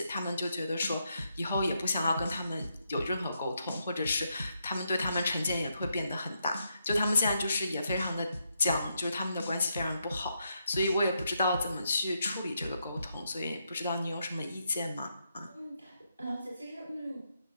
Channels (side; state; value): both; inverted; correlation -0.80